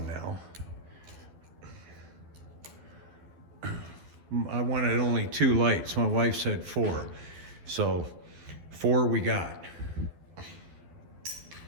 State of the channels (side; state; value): left; late; 12 ms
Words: now. I wanted only 2 lights. My wife said 4. So 4 we got.